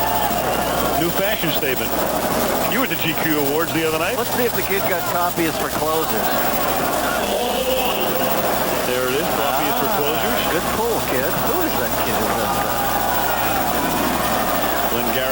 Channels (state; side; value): identical; both; correlation 1.00